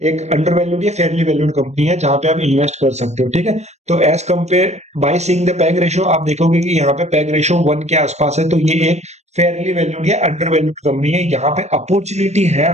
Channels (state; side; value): late; left; 0.32 ms